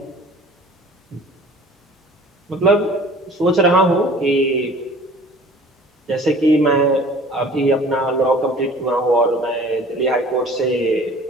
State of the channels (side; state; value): both; normal; correlation 0.47